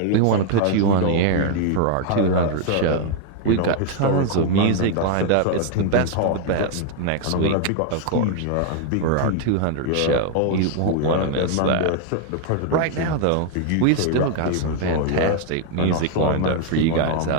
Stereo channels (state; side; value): different; both; correlation 0.00